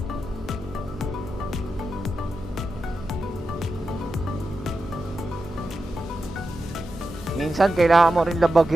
Minsan kailangan mo rin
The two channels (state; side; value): normal; both; correlation 0.90